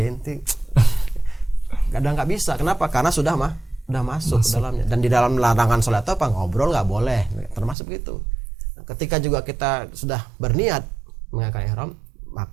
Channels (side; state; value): left; drops out; at 7.8 s